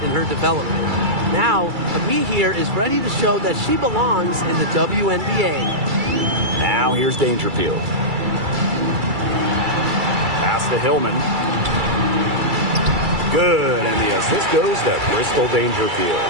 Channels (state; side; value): late; left; 2.3 ms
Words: in her development. Now, Ami here is ready to show that she belongs in the WNBA. Now here's Dangerfield. Pass to Hillman. Good, and the assist goes to Crystal Dangerfield.